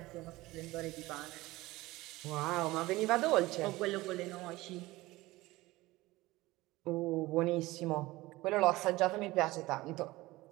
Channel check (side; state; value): left; quieter; 19.3 dB